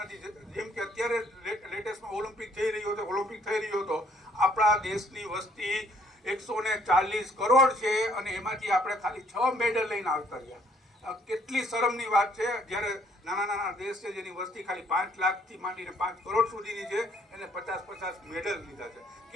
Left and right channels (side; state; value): both; normal; correlation 0.64